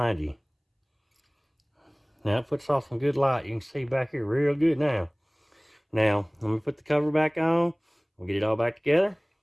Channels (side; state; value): both; identical; correlation 1.00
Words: you. Now it puts off some good light. You can see back here real good now. Now, let me put the cover back on. We'll get it all back together.